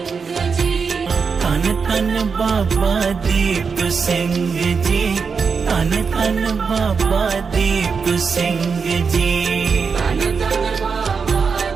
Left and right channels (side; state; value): left; quieter; 5.5 dB